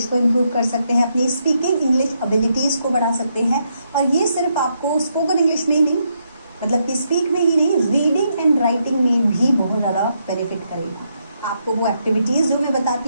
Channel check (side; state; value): both; inverted; correlation -0.79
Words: को इम्प्रूव कर सकते हैं, अपनी स्पीकिंग इंग्लिश एबिलिटीज़ को बढ़ा सकते हैं। और ये सिर्फ आपको स्पोकन इंग्लिश में ही नहीं, मतलब कि स्पीक में ही नहीं, रीडिंग एंड राइटिंग में भी बहुत ज़्यादा बेनिफिट करेगा। आपको वो एक्टिविटीज़ जो मैं